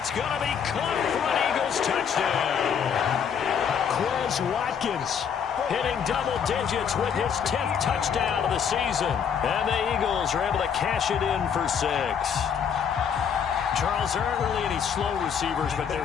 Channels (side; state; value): right; quieter; 7.5 dB